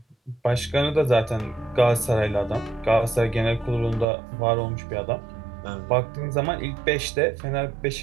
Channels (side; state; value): left; drops out; at 4.0 s